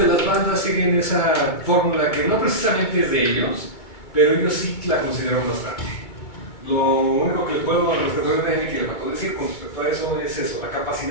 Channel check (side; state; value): right; late; 2.2 ms